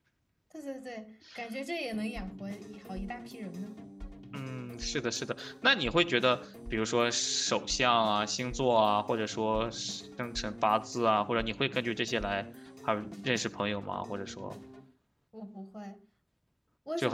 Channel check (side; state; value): both; identical; correlation 1.00